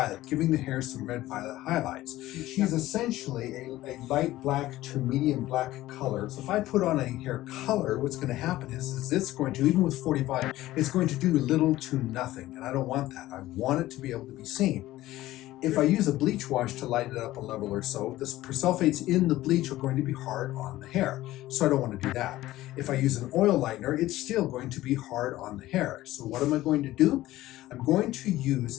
giving the hair some red violet highlights. She's essentially a light black to medium black color. So if I put on a hair color, what's going to happen is it's going to, even with 45, it's going to do little to nothing, and I don't want that. I want it to be able to be seen. If I use a bleach wash to lighten it up a level or so, the persulfates in the bleach are going to be hard on the hair, so I don't want to do that. If I use an oil lightener, it's still going to be hard on the hair. So what am I going to do? I'm going to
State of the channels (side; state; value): right; quieter; 16.0 dB